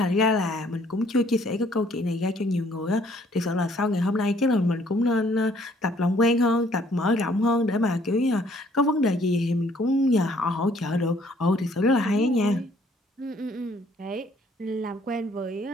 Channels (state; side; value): normal; both; correlation 0.62